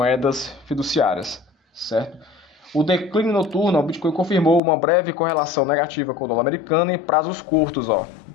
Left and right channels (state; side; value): drops out; right; at 4.6 s